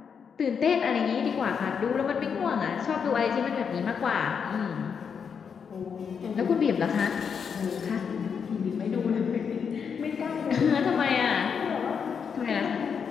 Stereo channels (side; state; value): right; quieter; 6.6 dB